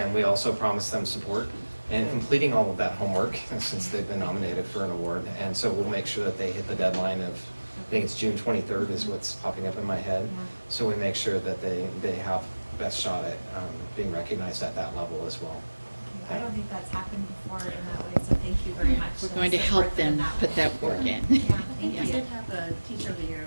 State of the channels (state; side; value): inverted; both; correlation -1.00